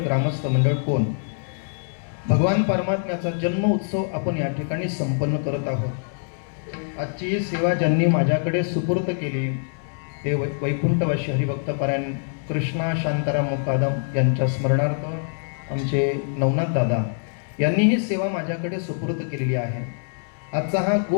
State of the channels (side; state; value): right; silent; digital silence